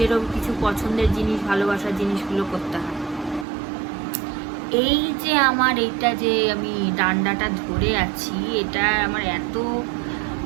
কিছু পছন্দের জিনিস, ভালোবাসার জিনিসগুলো করতে হয়। এই যে আমার এইটা যে আমি ডান্ডাটা ধরে আছি, এটা আমার এত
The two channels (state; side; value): drops out; left; at 3.5 s